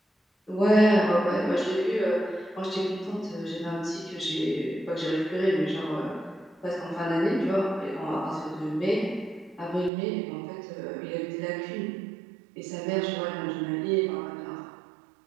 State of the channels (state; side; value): drops out; left; at 9.9 s